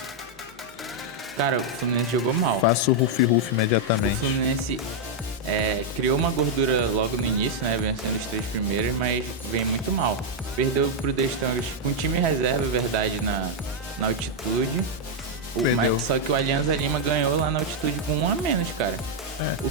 Cara, o Fluminense jogou mal. Faça o Rufi imediatamente. O Fluminense criou uma gordura logo no início, né? Vencendo os 3 primeiros, mas vem muito mal. Perdeu pro The Strongest com time reserva, verdade, na altitude. Só que o Alianza Lima ganhou lá na altitude com 1 a menos, cara. O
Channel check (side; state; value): both; normal; correlation -0.01